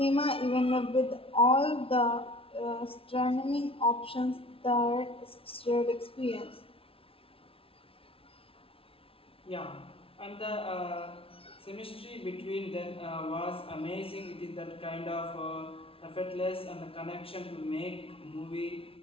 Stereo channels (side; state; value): right; late; 0.26 ms